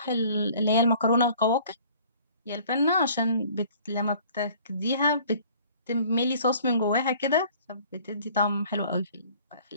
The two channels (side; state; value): both; inverted; correlation -0.52